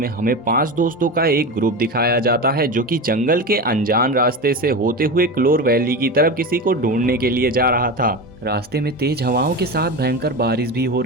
हमें 5 दोस्तों का एक ग्रुप दिखाया जाता है जो कि जंगल के अनजान रास्ते से होते हुए क्लोर वैली की तरफ किसी को ढूंढने के लिए जा रहा था। रास्ते में तेज हवाओं के साथ भयंकर बारिश भी हो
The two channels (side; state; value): both; normal; correlation 0.24